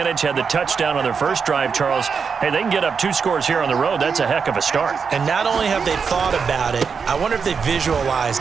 Had the touchdown on their first drive, Charles. Hey, they can get up 2 scores here on the road. That's a heck of a start. And not only have they thought about it, I wonder if they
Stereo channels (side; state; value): left; quieter; 5.9 dB